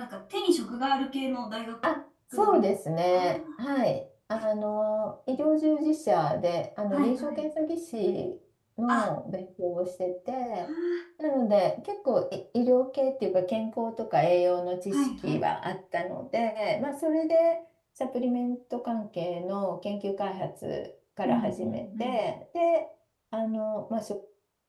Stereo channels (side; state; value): both; identical; correlation 1.00